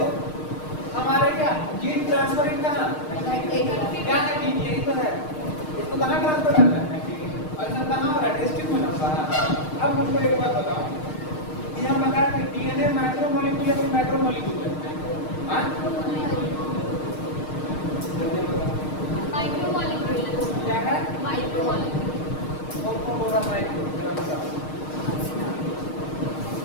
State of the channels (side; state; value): right; late; 6.5 ms